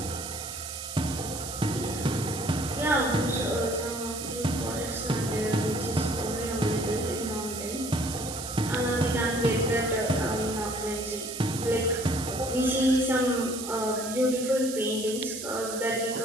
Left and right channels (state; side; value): noise; right; hiss, 8 dB below the sound